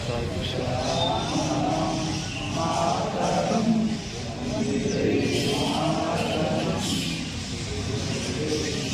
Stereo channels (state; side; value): identical; both; correlation 1.00